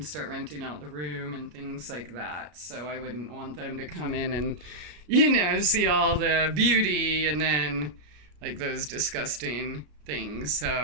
start renting out the room and things like that. So I wouldn't want them to come in and, see all the beauty and then like those disgusting things.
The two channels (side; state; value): left; late; 33 ms